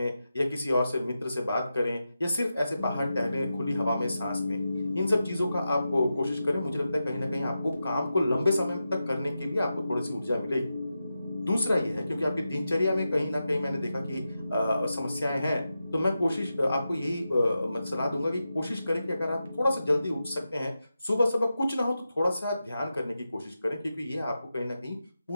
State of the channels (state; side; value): inverted; both; correlation -0.90